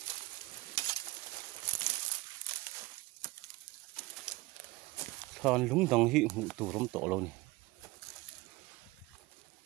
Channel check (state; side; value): quieter; left; 21.1 dB